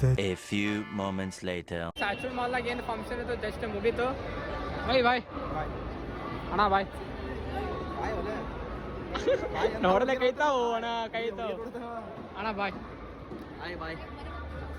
A few moments later. ಸ್ಯಾಚುಲ್ ಮಾಲ್ನಾಗ ಏನು ಫಂಕ್ಷನ್ ಇತ್ತು ಜಸ್ಟ್ ಮುಗೀತು. ಬಾಯ್ ಅಣ್ಣ ಬಾಯ್ ನೋಡಲೆ ಕೈತಾವು ಅಣ್ಣ ಕೈತಾವು ಅಣ್ಣ ಬಾಯ್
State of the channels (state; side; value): identical; both; correlation 1.00